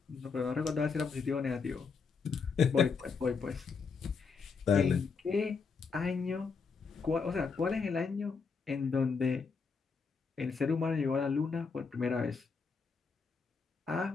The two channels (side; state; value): right; quieter; 5.2 dB